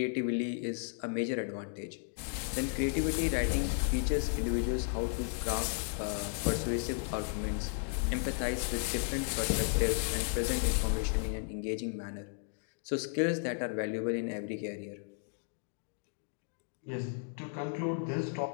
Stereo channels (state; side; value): silent; right; 55 dB below the other